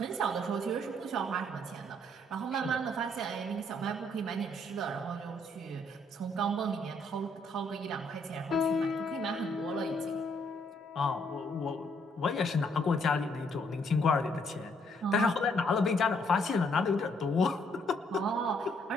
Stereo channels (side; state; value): both; normal; correlation 0.69